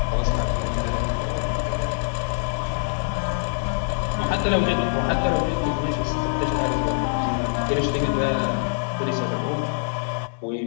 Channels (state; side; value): silent; right; digital silence